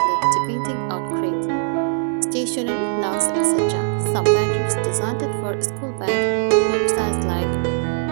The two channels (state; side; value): silent; left; digital silence